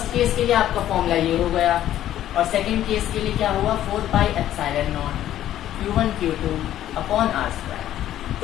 केस के लिए आपका फॉर्मूला ये हो गया और सेकंड केस के लिए क्या हुआ? 4 pi epsilon not Q1 Q2 upon r²।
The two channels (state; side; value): quieter; right; 12.3 dB